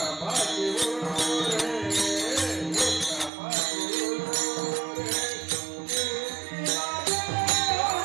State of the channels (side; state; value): left; drops out; at 3.3 s